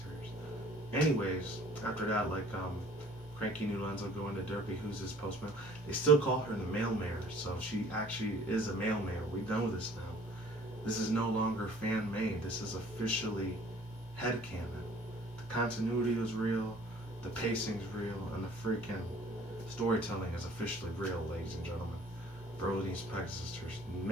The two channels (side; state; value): both; normal; correlation 0.53